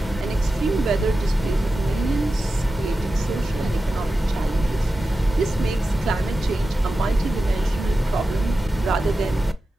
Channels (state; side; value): normal; both; correlation 0.93